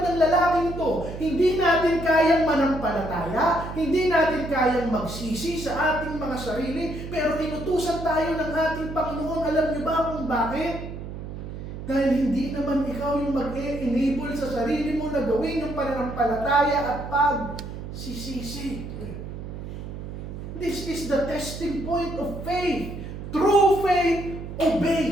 ng lalaking to. Hindi natin kayang manampalataya, hindi natin kayang magsisi sa ating mga sarili, pero inutusan tayo ng ating Panginoon. Alam niyo ba kung bakit? Dahil hindi naman ikaw yung mag-enable sa sarili mo na gawin yung pananampalataya at pagsisisi. This is the testing point of faith. True faith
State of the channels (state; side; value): noise; right; hum, 9 dB below the sound